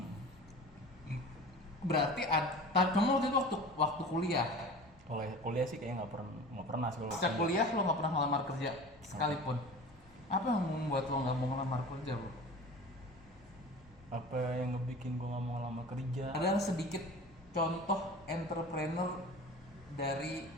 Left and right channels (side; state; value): both; normal; correlation 0.38